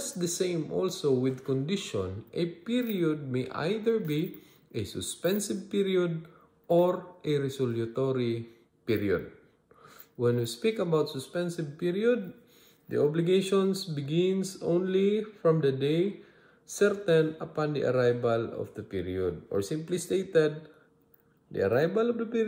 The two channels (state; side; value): identical; both; correlation 1.00